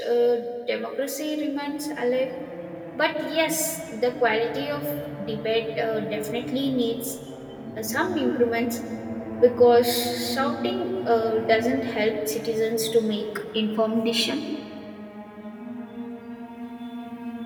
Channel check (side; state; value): both; identical; correlation 1.00